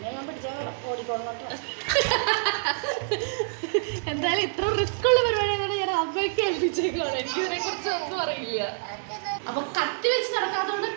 ഞാൻ പിടിച്ചാൽ ഓടിക്കോളോട്ടോ. എന്തായാലും ഇത്ര റിസ്ക് ഉള്ള പരിപാടിയാണ് ഞാൻ അമ്മയ്ക്ക് ഏൽപ്പിച്ചേക്കാണ്. എനിക്കിതിനെ കുറിച്ച് ഒന്നും അറിയില്ല. അപ്പൊ കത്തി വെച്ച് നടക്കാത്തതുകൊണ്ട്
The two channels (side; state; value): left; silent; 56 dB below the other